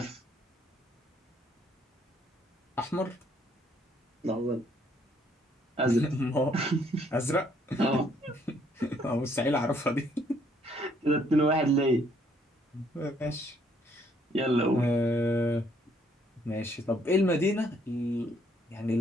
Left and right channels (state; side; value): normal; both; correlation 0.67